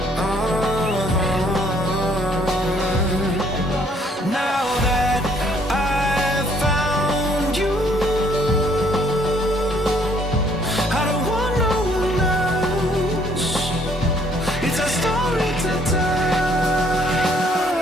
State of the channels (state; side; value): normal; both; correlation 0.63